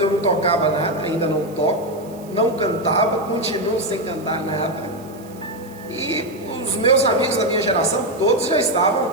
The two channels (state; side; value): noise; right; hiss, 24 dB below the sound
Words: eu não tocava nada, ainda não toco, não cantava, continuo sem cantar nada. E os meus amigos da minha geração, todos já estavam